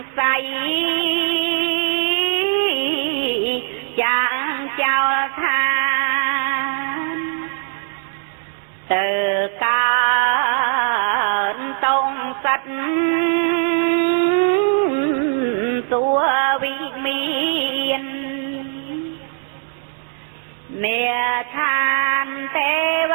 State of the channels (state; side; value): silent; left; digital silence